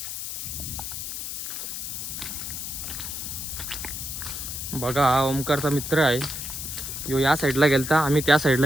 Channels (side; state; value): left; noise; hiss, 6 dB below the sound